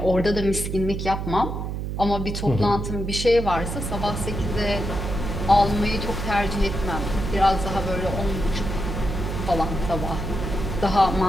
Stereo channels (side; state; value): right; noise; hum, 4 dB below the sound